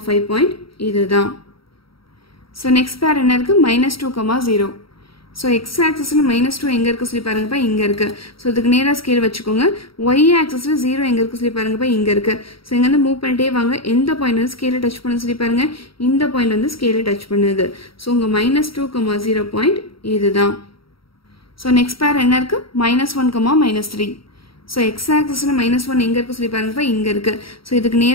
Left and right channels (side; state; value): right; late; 0.75 ms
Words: 5 பாயிண்ட் இதுதான். ஸோ நெக்ஸ்ட் பேர் என்ன இருக்குது, -2, 0. ஸோ எக்ஸ் ஆக்சிஸில் -2 எங்கே இருக்குது சொல்லி பாருங்கப்பா, இங்கே இருக்குது. ஸோ இதுக்கு நேராக ஸ்கேல் வச்சுக்கோங்க. ஒய் ஆக்சிஸில் 0 எங்கே இருக்குது சொல்லி பாருங்கப்பா, இங்கே இருக்குது. ஸோ இங்கேருந்து மூவ் பண்ணிட்டே வாங்க. எந்த பாயிண்ட் வந்து ஸ்கேலை டச் பண்ணுன்னு சொல்லி பாருங்கள், இந்த பாயிண்ட் வந்து ஸ்கேலை டச் பண்ணுது. ஸோ உங்கள் -2, 0 பாயிண்ட் இதுதான். ஸோ நெக்ஸ்ட் பேர் என்ன இருக்குது, -1, -3. ஸோ எக்ஸ் ஆக்சிஸில் -1 எங்கே இருக்குது சொல்லி பாருங்கப்பா, இங்கே இருக்குது. ஸோ இதுக்கு